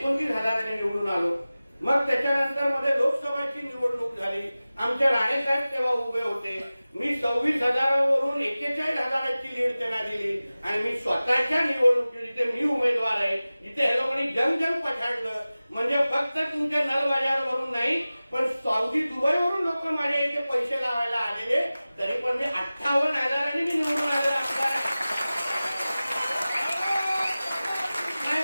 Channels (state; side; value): inverted; both; correlation -0.97